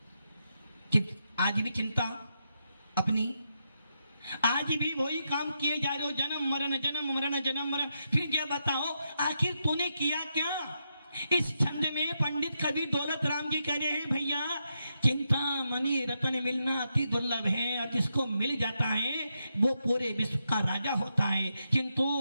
आज भी चिंता अपनी, आज भी वही काम किए जा रहे हो, जन्म मरण। फिर ये बताओ आखिर तूने किया क्या? इस छंद में पंडित कवि दौलत राम जी कह रहे हैं, भैया चिंतामणि रतन मिलना अति दुर्लभ है और जिसको मिल जाता है वो पूरे विश्व का राजा होता है। किंतु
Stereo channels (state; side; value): inverted; both; correlation -0.83